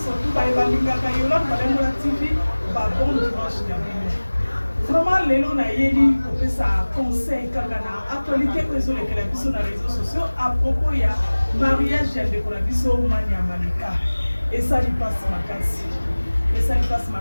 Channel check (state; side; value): inverted; both; correlation -1.00